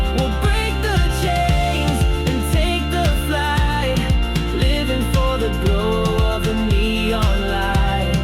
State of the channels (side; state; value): both; identical; correlation 1.00